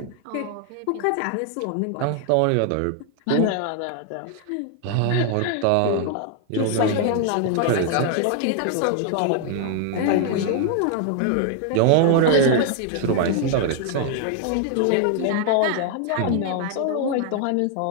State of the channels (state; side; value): different; both; correlation 0.00